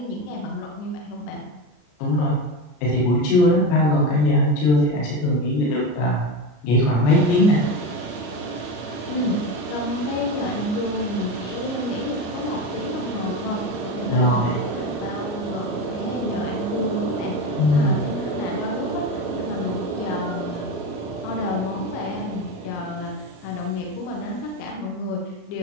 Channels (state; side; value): late; right; 33 ms